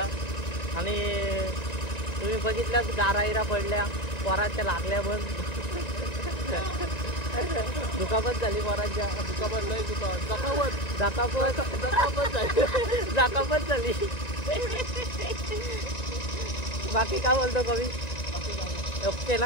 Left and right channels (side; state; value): right; late; 1.9 ms